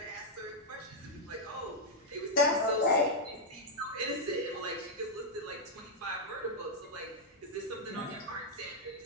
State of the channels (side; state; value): both; normal; correlation -0.04